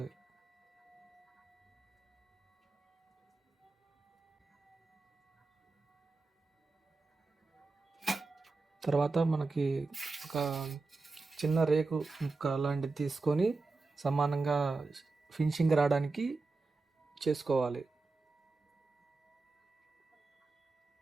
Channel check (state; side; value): quieter; left; 3.8 dB